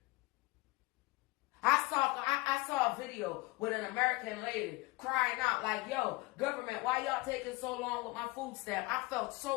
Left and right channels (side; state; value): right; quieter; 22.6 dB